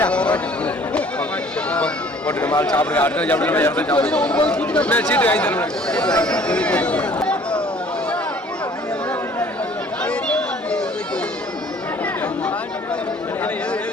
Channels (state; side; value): normal; both; correlation 0.54